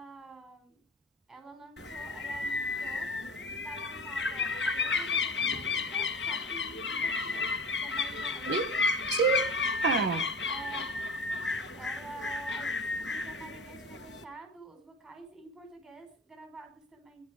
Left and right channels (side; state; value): both; normal; correlation 0.32